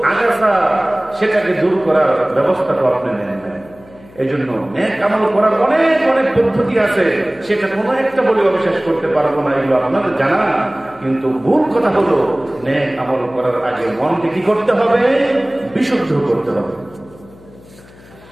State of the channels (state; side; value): noise; left; hum, 23 dB below the sound